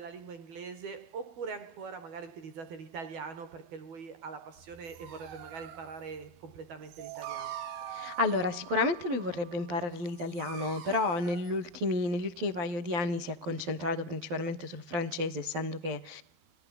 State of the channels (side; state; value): left; late; 12 ms